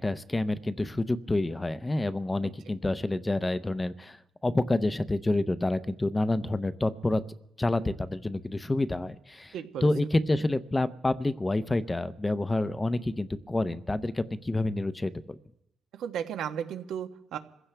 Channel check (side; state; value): both; normal; correlation 0.96